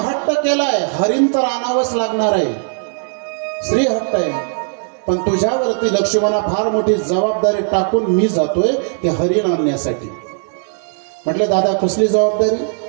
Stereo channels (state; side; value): silent; left; digital silence